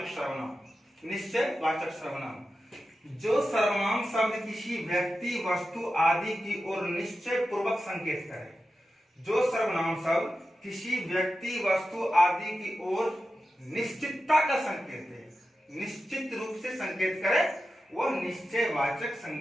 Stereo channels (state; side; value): normal; both; correlation 0.92